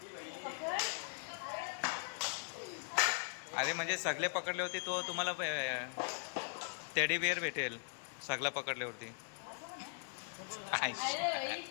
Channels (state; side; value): silent; right; digital silence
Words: अरे म्हणजे सगळे पकडले होते तो तुम्हाला टेडी बिअर भेटेल सगळं पकडल्यावरती.